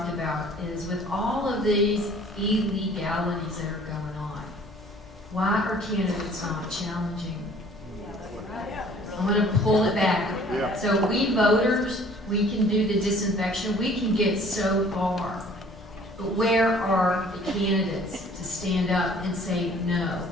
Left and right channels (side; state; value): both; normal; correlation 0.54